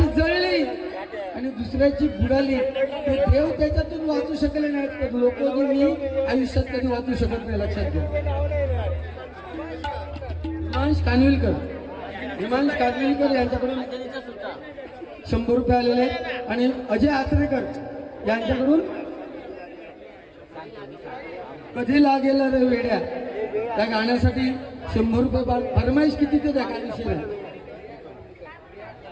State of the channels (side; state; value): both; identical; correlation 1.00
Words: जळली आणि दुसऱ्याची बुडाली. ते देव त्याच्यातून वाचू शकले नाहीत तर लोक मी आयुष्यात कधी वाचू शकत नाही. लक्षात घ्या. हिमांश कानविलकर यांच्याकडून 100 रुपये आलेले आणि अजय आचरेकर यांच्याकडून कधी लागेल रे वेड्या त्या गाण्यासाठी 100 रुपये फरमाईश किती ते द्या, काय विषय नाही.